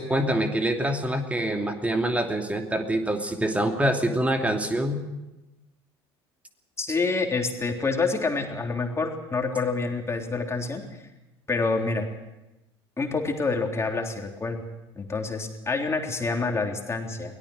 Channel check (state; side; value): normal; both; correlation 0.67